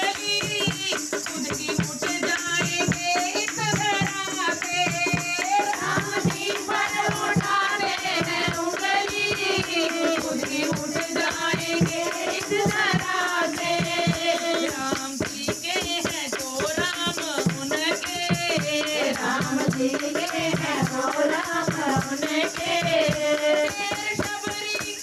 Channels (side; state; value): both; identical; correlation 1.00